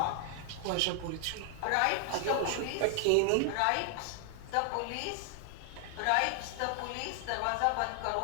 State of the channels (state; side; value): different; both; correlation 0.00